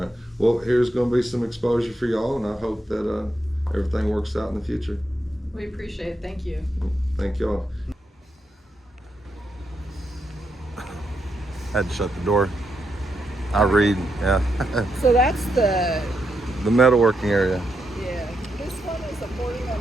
Well, here's going to be some exposure for y'all, and I hope that everything works out in the future. We appreciate it. Thank you. Thank y'all. Had to shut the door. I read, yeah. So that's the The metalworking area. Yeah, this one is a 41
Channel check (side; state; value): both; normal; correlation 0.82